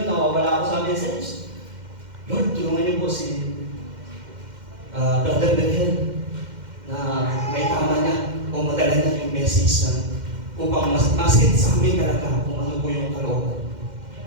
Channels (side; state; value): left; late; 2.1 ms